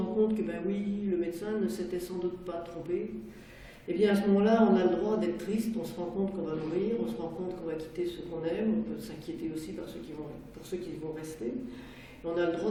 compte que ben oui, le médecin ne s'était sans doute pas trompé. Et bien à ce moment-là, on a le droit d'être triste, on se rend compte qu'on va mourir, on se rend compte qu'on va quitter ceux qu'on aime, on peut s'inquiéter aussi pour ceux qui vont rester. Et on a le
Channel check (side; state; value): both; identical; correlation 1.00